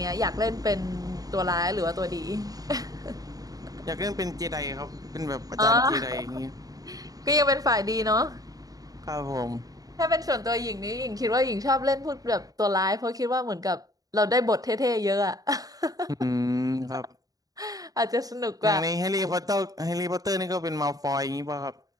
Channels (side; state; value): left; late; 0.18 ms